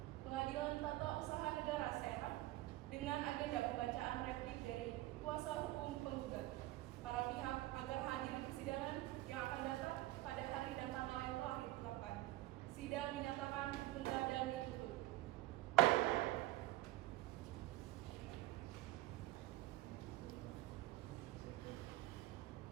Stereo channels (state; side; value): quieter; left; 17.1 dB